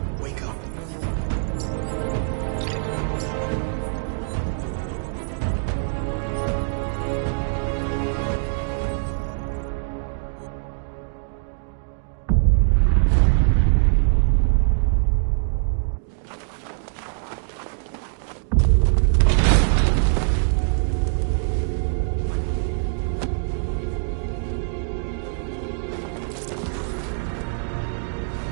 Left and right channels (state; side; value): silent; left; digital silence